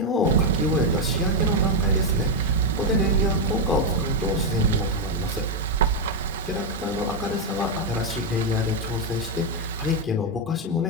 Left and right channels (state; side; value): normal; both; correlation 0.03